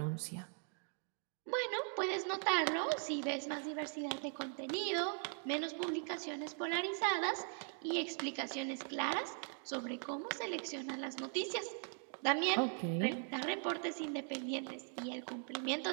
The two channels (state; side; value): silent; left; 51 dB below the other